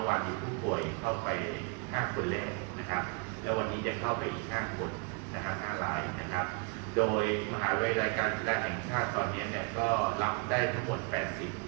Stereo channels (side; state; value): left; quieter; 34.3 dB